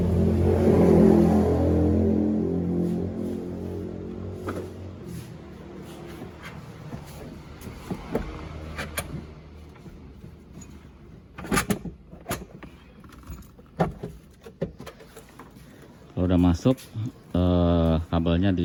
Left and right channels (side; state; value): both; identical; correlation 1.00